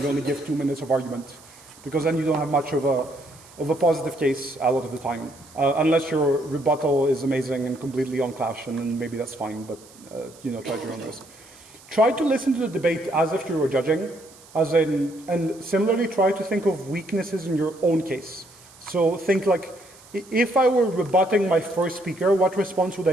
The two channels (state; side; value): noise; right; hiss, 23 dB below the sound